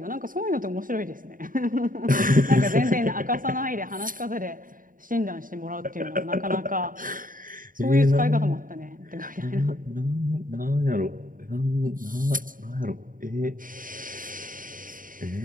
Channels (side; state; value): left; late; 0.40 ms